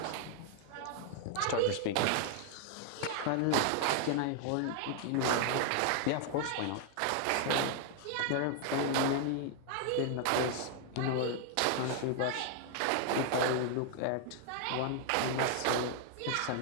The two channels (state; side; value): different; both; correlation 0.00